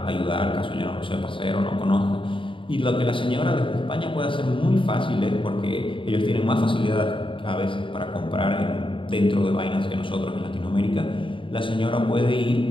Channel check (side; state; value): right; late; 0.25 ms